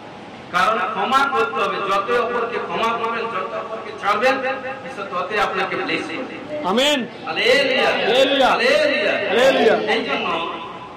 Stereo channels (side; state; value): both; identical; correlation 1.00